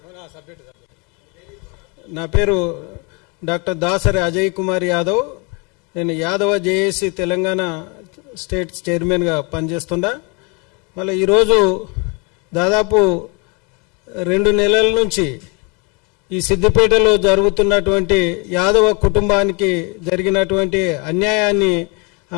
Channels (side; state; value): right; quieter; 32.1 dB